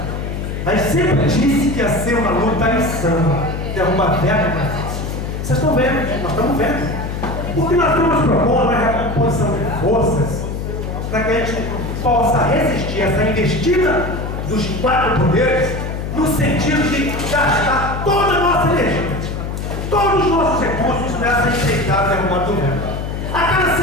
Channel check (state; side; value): noise; left; hum, 5 dB below the sound